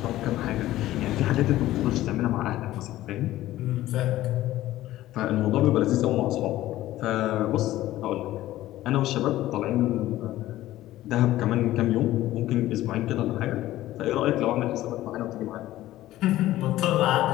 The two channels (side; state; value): right; quieter; 15.2 dB